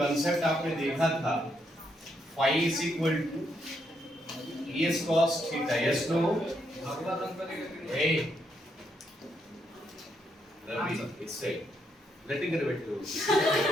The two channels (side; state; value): both; normal; correlation 0.77